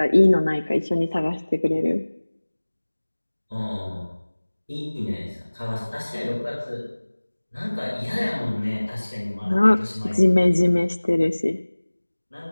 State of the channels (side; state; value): both; inverted; correlation -1.00